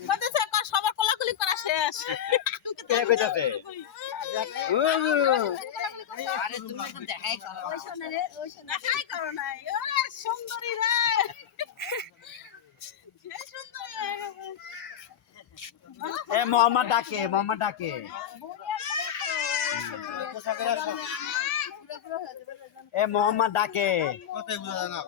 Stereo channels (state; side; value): quieter; right; 9.5 dB